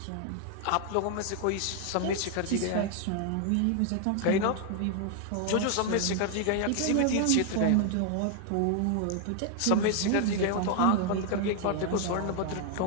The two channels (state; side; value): different; both; correlation 0.00